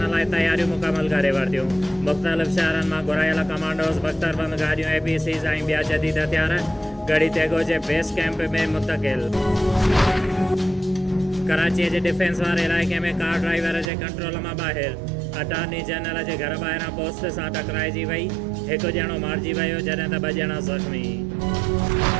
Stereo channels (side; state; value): left; drops out; at 13.9 s